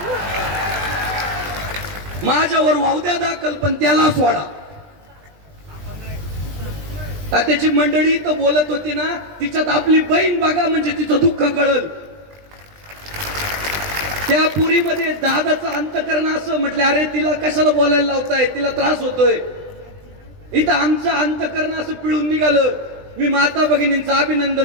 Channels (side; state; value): left; late; 20 ms